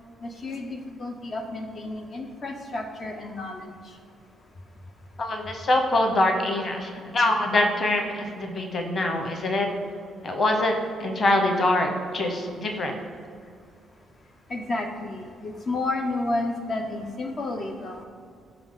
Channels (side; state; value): both; normal; correlation 0.79